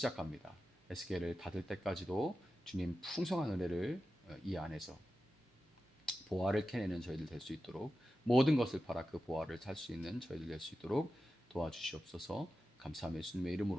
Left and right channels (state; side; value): normal; both; correlation 0.92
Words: 에스겔을 닫을 때까지도 주님 풍성한 은혜를 이 안에서 보화를 캐내는 저희들 될 수 있도록 모든 것을 팔아 그 보화를 살 수 있는 저희들 될 수 있도록 도와주시옵소서. 감사하며 예수님의